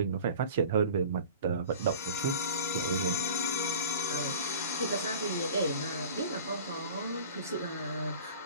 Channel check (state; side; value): inverted; both; correlation -0.42